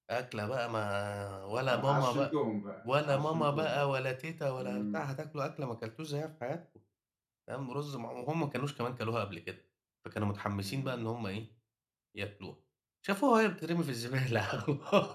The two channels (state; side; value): identical; both; correlation 1.00